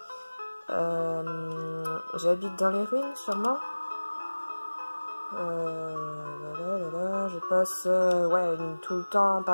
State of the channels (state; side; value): inverted; both; correlation -1.00